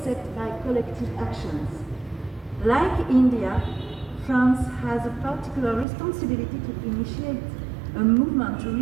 by collective actions. Like India, France has a particular responsibility to initiate a movement to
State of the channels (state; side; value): drops out; left; at 5.9 s